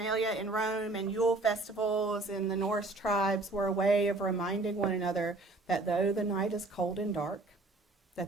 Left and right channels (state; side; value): quieter; left; 3.0 dB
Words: in Rome and Yule festivals in the Norse tribes were a way of reminding one another that though the night is cold and dark,